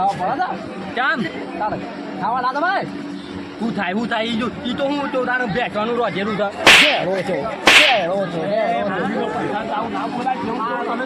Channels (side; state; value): both; identical; correlation 1.00